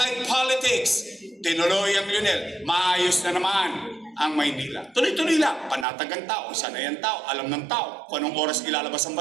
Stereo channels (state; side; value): drops out; left; at 5.9 s